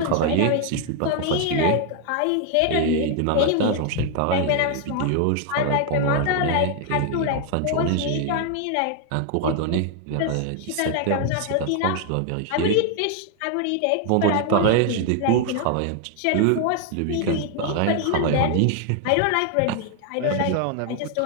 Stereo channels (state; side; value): different; both; correlation 0.00